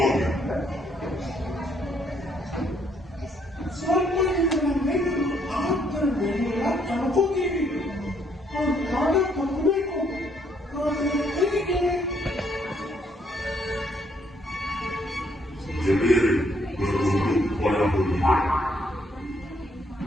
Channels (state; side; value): normal; both; correlation 0.70